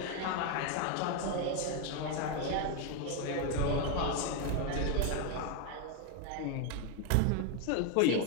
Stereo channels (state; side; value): different; both; correlation 0.01